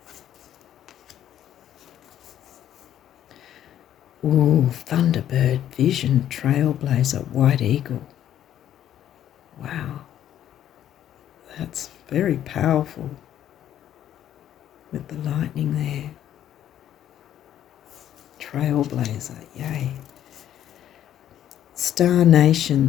Ooh, Thunderbird, vision, trailblazer, white eagle. Wow. That's very powerful with the lightning there. Trailblazer, yay. Star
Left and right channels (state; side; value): quieter; right; 11.1 dB